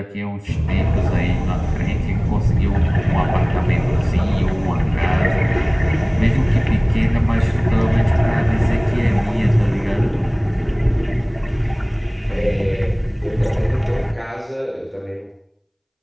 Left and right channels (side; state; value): both; identical; correlation 1.00